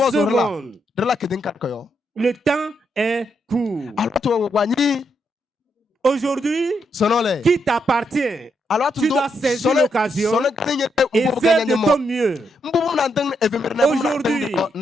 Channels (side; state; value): both; normal; correlation 0.79